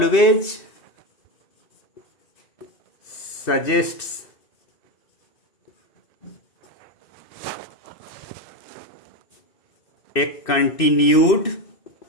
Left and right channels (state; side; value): late; right; 2.7 ms